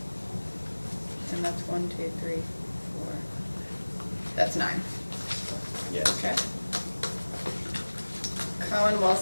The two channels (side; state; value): both; inverted; correlation -1.00